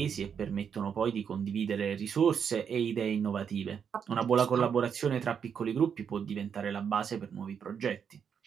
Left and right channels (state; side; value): quieter; left; 7.3 dB